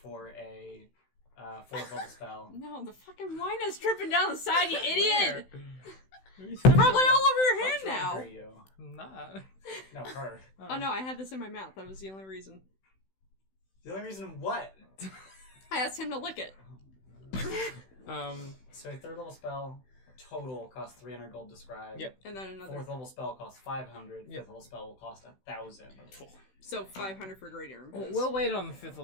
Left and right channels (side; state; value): right; late; 16 ms